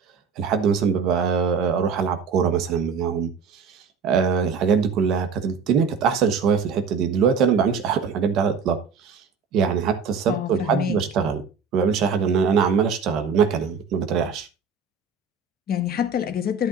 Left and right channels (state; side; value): quieter; left; 5.3 dB